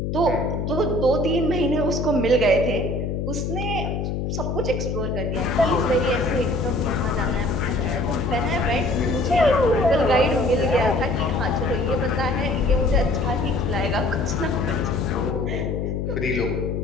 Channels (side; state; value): left; noise; hum, 2 dB below the sound